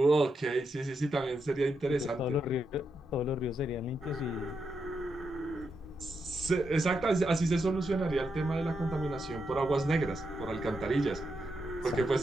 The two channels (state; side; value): normal; both; correlation 0.84